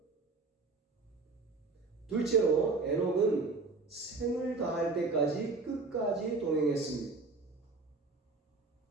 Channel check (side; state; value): left; quieter; 3.8 dB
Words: 둘째로 에녹은 생을 다할 때까지 끝까지 동행했습니다.